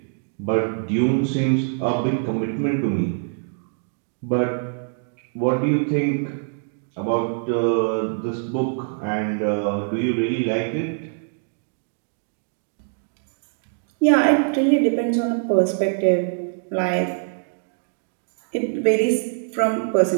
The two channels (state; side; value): silent; left; 63 dB below the other